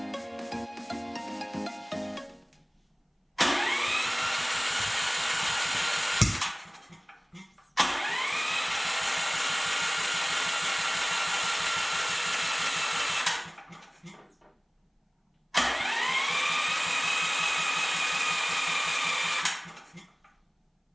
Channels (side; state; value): both; identical; correlation 1.00